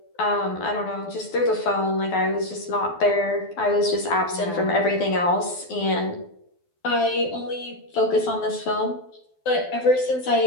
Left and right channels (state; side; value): late; right; 12 ms